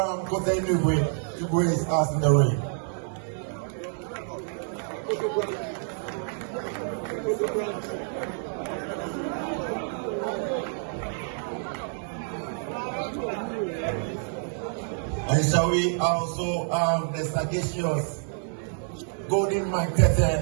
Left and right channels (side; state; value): left; silent; 60 dB below the other